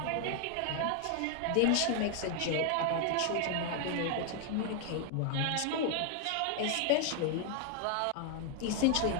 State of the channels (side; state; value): both; different; correlation 0.00